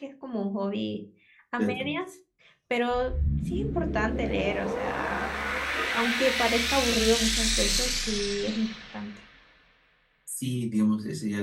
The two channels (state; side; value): identical; both; correlation 1.00